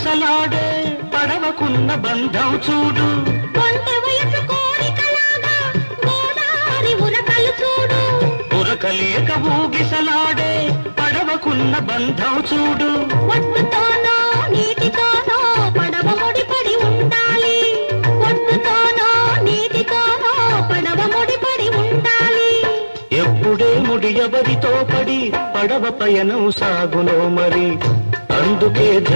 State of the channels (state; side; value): inverted; both; correlation -1.00